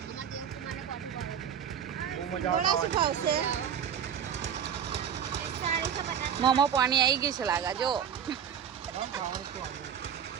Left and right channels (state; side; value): quieter; left; 8.5 dB